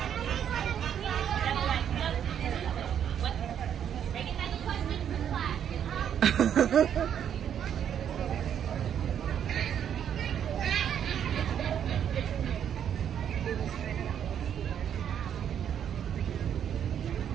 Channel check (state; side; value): quieter; left; 9.1 dB